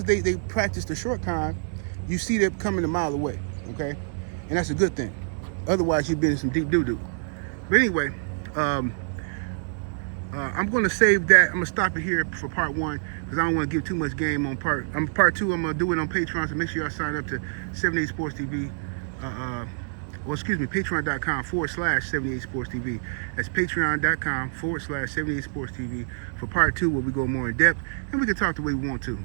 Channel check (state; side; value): silent; left; digital silence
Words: they practice the short con, you see them coming a mile away, okay? And that's a good thing. Otherwise, you'd be in some deep doo-doo. But anyway, I'm going to save that. I'm going to stop it here for part one because I don't want to give too much game on part two. I'm going to do it on Patreon, so make sure y'all sign up to 78 Sports TV. Patreon.com/78 Sports TV. That's patreon.com/78 Sports TV for part two, where we go more in depth and we can talk the way we want to.